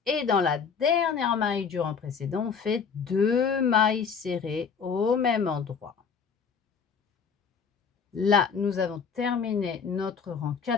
et dans la dernière maille du rang précédent, on fait 2 mailles serrées au même endroit. Là, nous avons terminé notre rang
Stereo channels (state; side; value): quieter; right; 6.2 dB